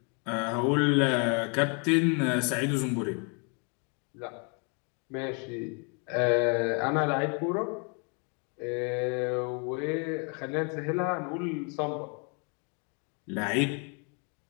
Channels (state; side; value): quieter; right; 36.4 dB